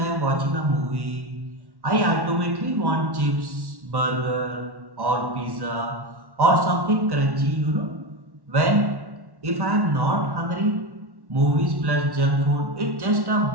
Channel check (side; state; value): left; late; 1.1 ms